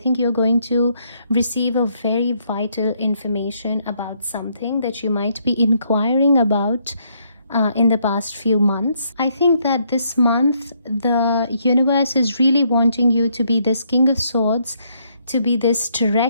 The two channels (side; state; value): both; inverted; correlation -0.73